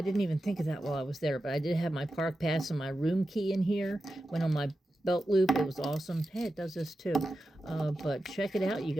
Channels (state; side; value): normal; both; correlation 0.91